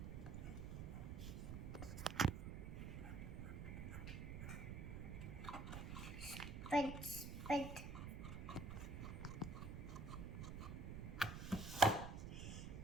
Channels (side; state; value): right; noise; rumble, 5 dB below the sound